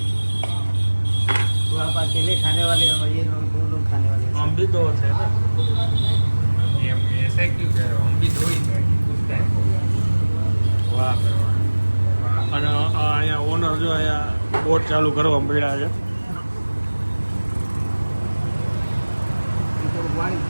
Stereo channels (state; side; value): inverted; both; correlation -1.00